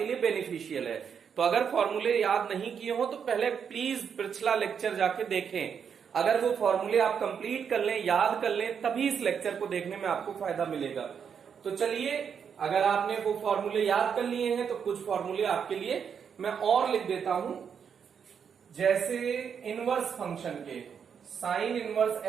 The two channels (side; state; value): left; quieter; 7.2 dB